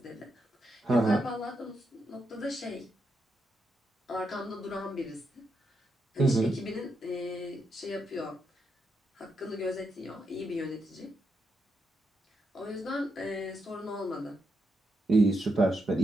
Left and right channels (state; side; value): normal; both; correlation 0.83